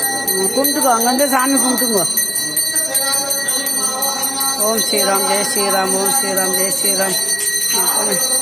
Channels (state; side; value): identical; both; correlation 1.00